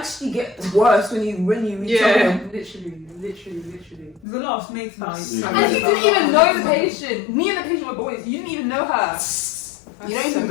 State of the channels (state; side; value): drops out; right; at 4.2 s